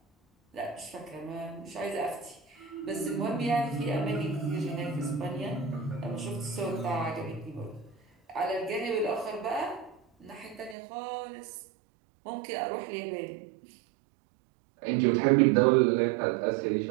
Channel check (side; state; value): left; drops out; at 10.8 s